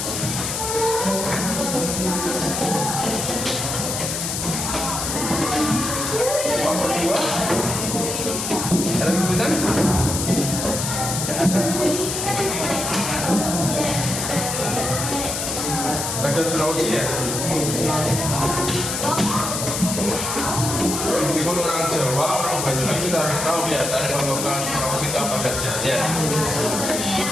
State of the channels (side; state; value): left; noise; hiss, 3 dB below the sound